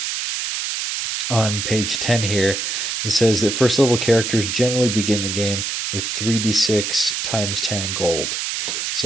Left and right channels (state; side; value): noise; right; hiss, 2 dB below the sound